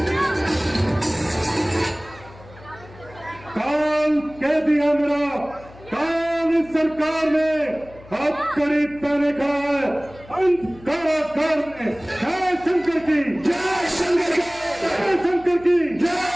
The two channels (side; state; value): left; noise; hum, 21 dB below the sound